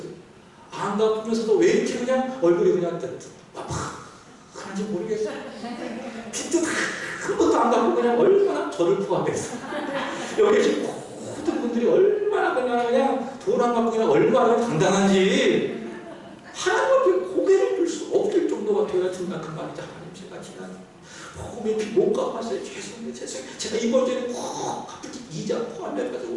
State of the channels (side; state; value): both; identical; correlation 1.00